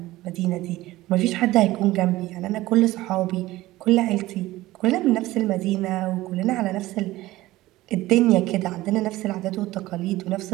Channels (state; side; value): quieter; left; 17.3 dB